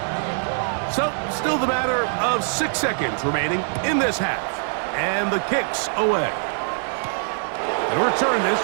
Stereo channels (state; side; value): silent; left; 63 dB below the other